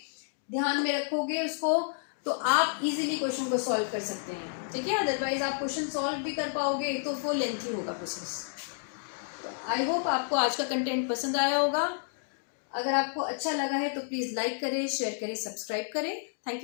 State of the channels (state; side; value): silent; right; digital silence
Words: ध्यान में रखोगे उसको, तो आप इजीली क्वेश्चन को सॉल्व कर सकते हैं, ठीक है। अदरवाइज आप क्वेश्चन सॉल्व भी कर पाओगे तो वो लेंथी होगा प्रोसेस। तो आई होप आपको आज का कंटेंट पसंद आया होगा। अगर आपको अच्छा लगा है तो प्लीज़ लाइक करें, शेयर करें, सब्सक्राइब करें। Thank